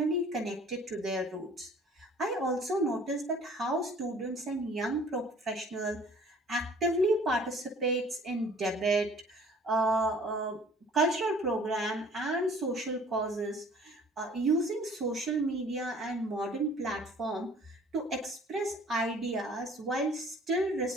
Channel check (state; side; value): normal; both; correlation 0.52